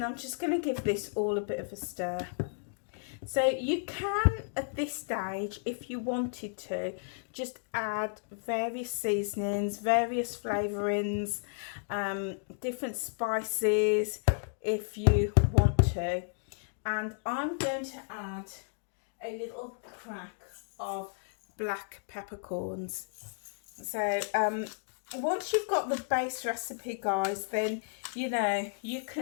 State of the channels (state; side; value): silent; right; digital silence